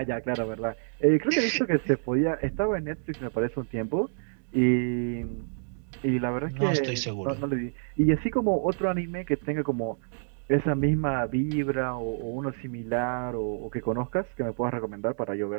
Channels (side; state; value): left; silent; digital silence